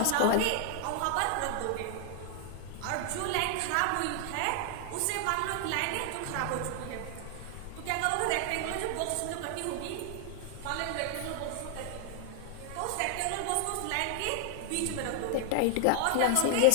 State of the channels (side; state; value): both; different; correlation 0.00